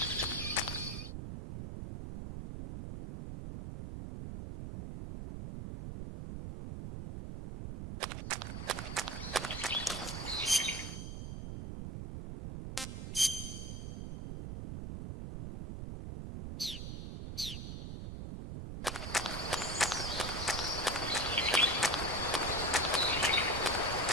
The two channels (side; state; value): right; noise; rumble, 6 dB below the sound